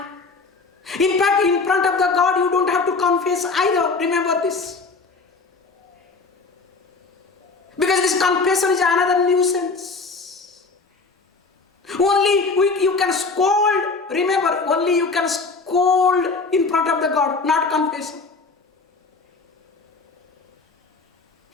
in fact, in front of the God, you don't have to confess either. Remember this. Because this confession is another nuisance. Only you can scold. Remember, only you can scold in front of the God, not confess.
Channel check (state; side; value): quieter; right; 4.1 dB